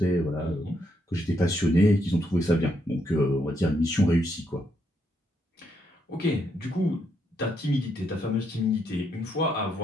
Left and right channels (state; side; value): normal; both; correlation 0.76